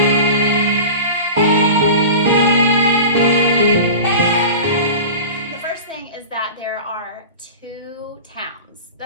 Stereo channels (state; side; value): inverted; both; correlation -0.33